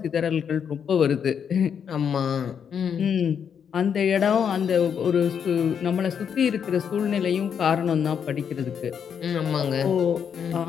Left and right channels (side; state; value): right; quieter; 7.6 dB